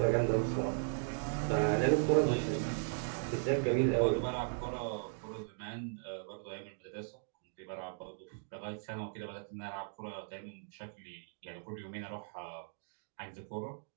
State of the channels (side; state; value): left; silent; digital silence